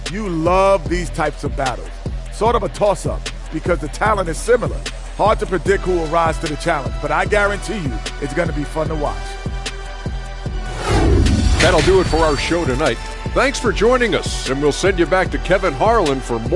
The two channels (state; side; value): identical; both; correlation 1.00